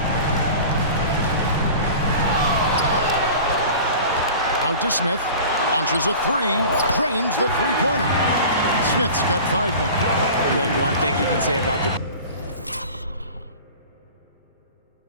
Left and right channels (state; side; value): inverted; both; correlation -0.39